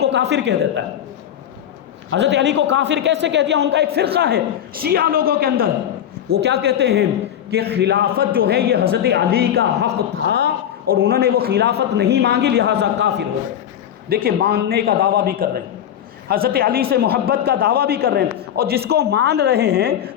کافر کہہ دیتا ہے۔ حضرت علی کو کافر کیسے کہہ دیا؟ ان کا ایک فرقہ ہے شیعہ لوگوں کے اندر، وہ کیا کہتے ہیں کہ خلافت جو ہے یہ حضرت علی کا حق تھا اور انہوں نے وہ خلافت نہیں مانگی لہٰذا کافر ہو گئے۔ دیکھیں ماننے کا دعویٰ بھی کر رہے ہیں، حضرت علی سے محبت کا دعویٰ بھی کر رہے ہیں، اور جس کو مان رہے ہیں،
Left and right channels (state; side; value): quieter; right; 10.2 dB